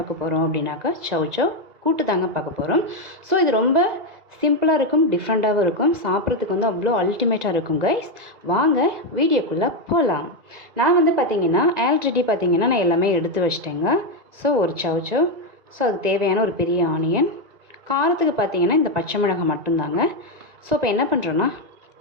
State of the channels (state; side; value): late; left; 2.0 ms